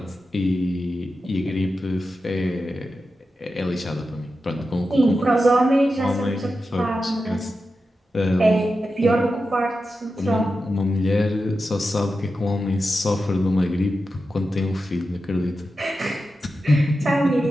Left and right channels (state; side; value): normal; both; correlation 0.91